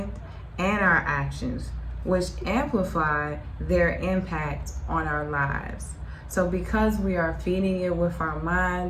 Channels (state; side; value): identical; both; correlation 1.00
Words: and our actions, which amplify their impact on our lives. So because we are feeding it with our